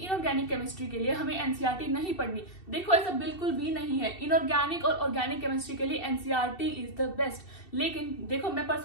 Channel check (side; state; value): right; late; 2.7 ms